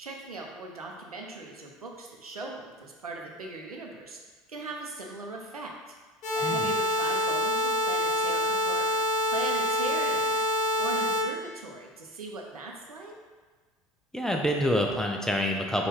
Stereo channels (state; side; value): normal; both; correlation 0.31